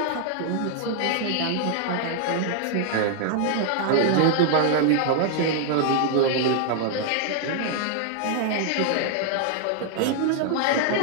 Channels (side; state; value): both; different; correlation 0.00